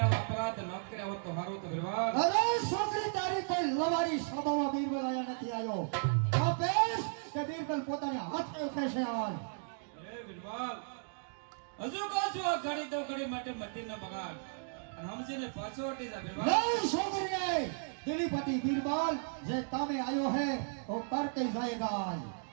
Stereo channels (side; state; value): left; silent; digital silence